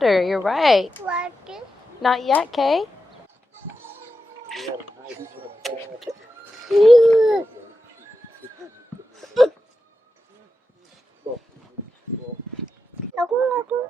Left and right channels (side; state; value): both; normal; correlation 0.89